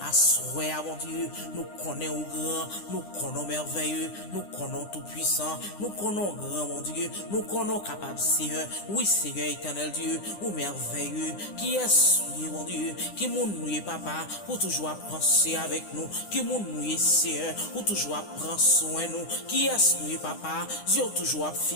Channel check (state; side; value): late; right; 9.9 ms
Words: Assoya, mon Dieu, nous connaissons grand, nous connaissons merveilleux, nous connaissons tout puissant, nous connaissons grand, mon Dieu. Nous connaissons capable, Seigneur. Oui, Seigneur éternel Dieu, ou merveilleux. Qui est mon Dieu? Qui nous papa, pour toujours penser avec nous. Qui nous Seigneur, pour toujours prendre soin de nous. Qui est nous, papa? Dieu toujours